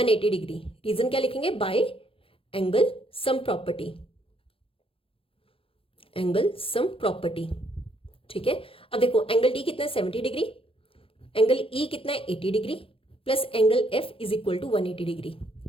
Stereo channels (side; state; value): right; late; 0.27 ms